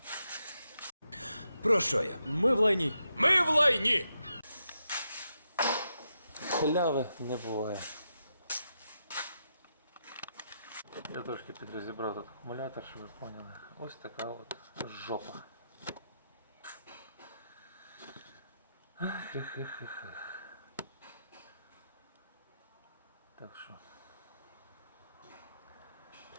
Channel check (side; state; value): both; inverted; correlation -0.83